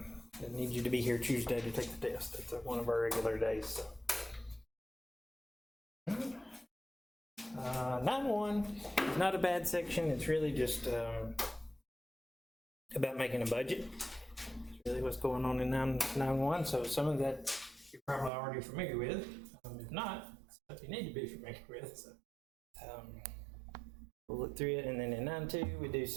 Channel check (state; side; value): drops out; left; at 18.3 s